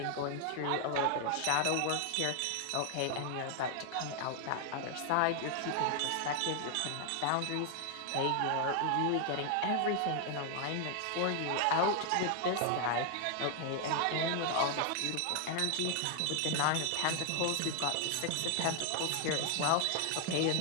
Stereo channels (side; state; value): both; different; correlation 0.00